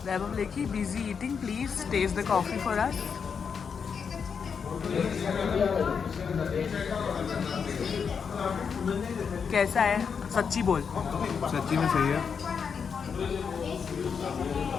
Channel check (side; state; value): right; quieter; 6.3 dB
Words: Vaibhav Lekhi busy eating, please taste the coffee for us. कैसा है? सच्ची बोल। सच्ची में सही है,